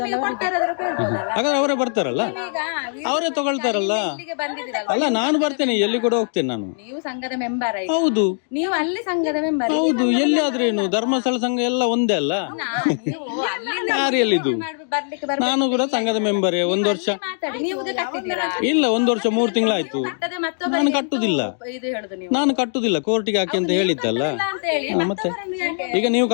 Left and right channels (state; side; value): silent; right; 64 dB below the other